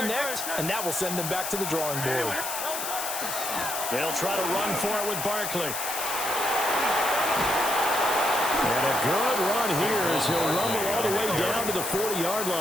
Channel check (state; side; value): noise; left; hiss, 4 dB below the sound